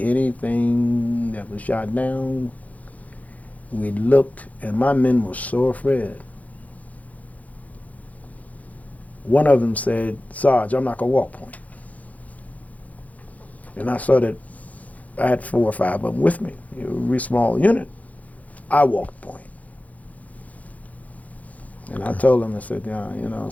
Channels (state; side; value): late; right; 0.073 ms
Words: anything that was shot down. We looked, and my men were so afraid. One of them said, Sarge, I'm not going to walk point. And I saw that I had 4 or 5 of them with me. It was a really small unit. I walked point. And I told them, I said,